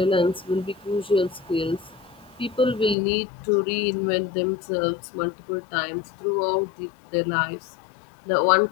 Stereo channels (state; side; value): drops out; right; at 3.0 s